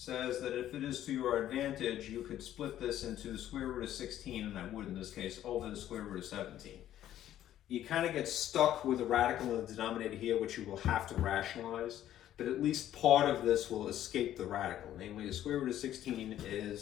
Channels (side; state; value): right; quieter; 12.1 dB